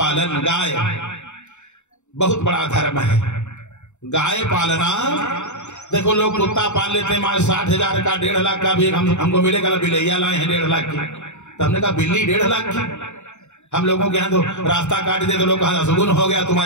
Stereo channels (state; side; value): late; right; 0.83 ms